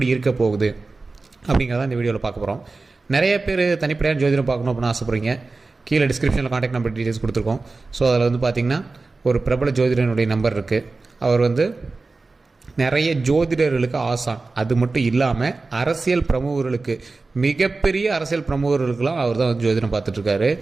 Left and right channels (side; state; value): left; quieter; 3.7 dB